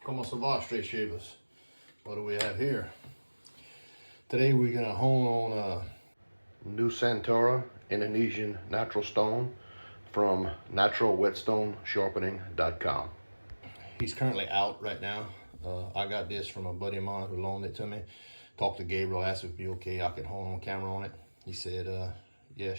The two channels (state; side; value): inverted; both; correlation -1.00